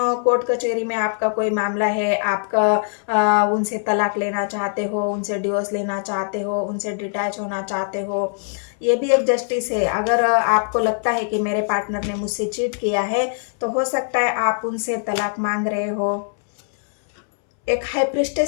कोर्ट कचहरी में आपका कोई मामला है, आपका उनसे तलाक लेना चाहते हो, उनसे डिवोर्स लेना चाहते हो, उनसे डिटैच होना चाहते हो। ये भी एक जस्टिस है। अगर आपको लगता है कि मेरे पार्टनर ने मुझसे चीट किया है, तो हो सकता है आप उनसे तलाक मांग रहे हो। एक हाई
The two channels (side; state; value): right; silent; 65 dB below the other